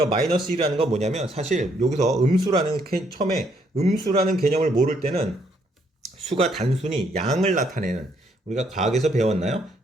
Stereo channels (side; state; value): both; normal; correlation 0.71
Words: 마이너스 1이라는 건 뭐냐면 사실 여기서 처음에 음수라는 개념을 모를 때는 수가 단순히 양을 나타내는 우리가 과학에서 배웠나요?